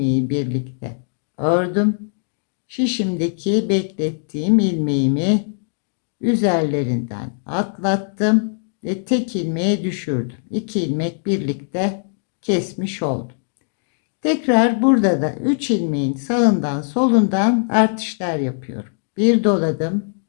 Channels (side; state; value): right; silent; digital silence